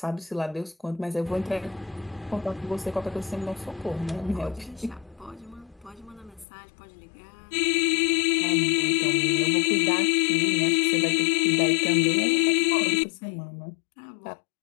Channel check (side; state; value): right; drops out; at 6.5 s